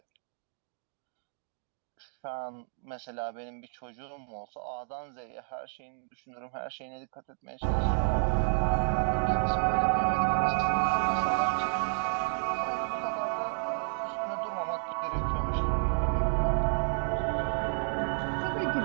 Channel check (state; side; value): silent; left; digital silence